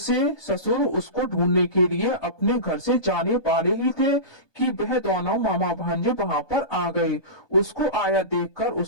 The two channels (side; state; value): right; late; 1.2 ms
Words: ससुर उसको ढूंढने के लिए अपने घर से जाने वाले ही थे कि वह दोनों मामा भांजे वहां पर आ गए। उसको आया देखकर